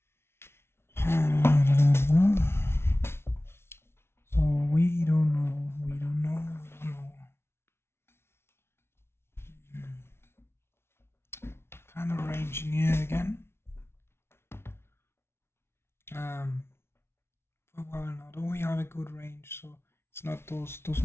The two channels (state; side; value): late; right; 0.12 ms